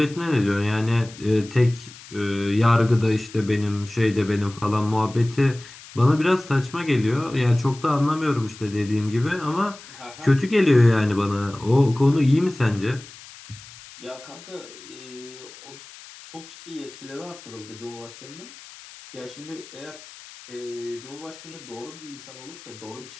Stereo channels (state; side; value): noise; left; hiss, 18 dB below the sound